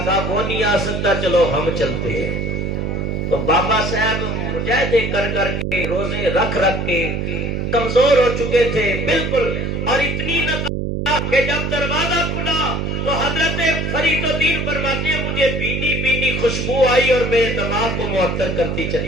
کہا وہ نہیں آ سکتا, چلو ہم چلتے ہیں. تو بابا صاحب مجاہدے کر کر کے روزے رکھ کے کمزور ہو چکے تھے بالکل, اور اتنی نہ کہ جب دروازہ کھلا تو حضرت فرید الدین فرماتے ہیں مجھے بینی بینی خوشبو آئی اور میرے دماغ کو معطر کرتی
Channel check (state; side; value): noise; right; hum, 2 dB below the sound